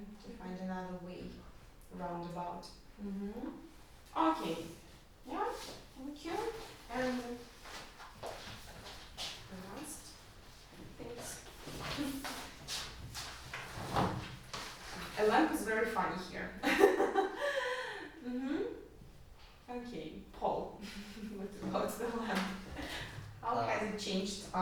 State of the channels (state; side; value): identical; both; correlation 1.00